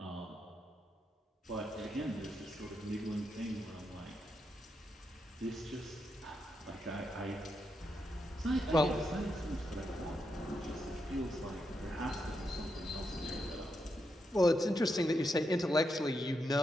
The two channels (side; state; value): both; normal; correlation 0.83